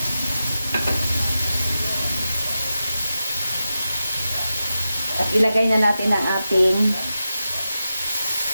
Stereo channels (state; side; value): inverted; both; correlation -0.91